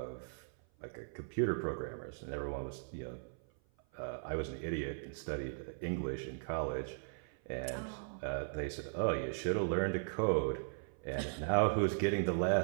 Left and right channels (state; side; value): silent; left; 52 dB below the other